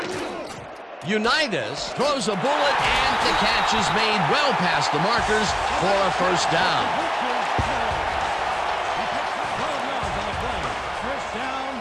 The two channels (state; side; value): identical; both; correlation 1.00